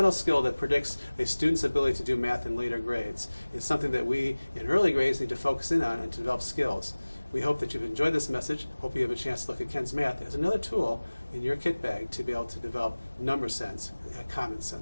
skill that predicts a student's ability to do math in later grades. It's something that we in early grades need to focus in on and to develop skills. We hope that you've enjoyed this message. Hope you have a chance to look at Ken's Math as another tool in your kit bag to be able to develop number sense in a common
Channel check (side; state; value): both; inverted; correlation -1.00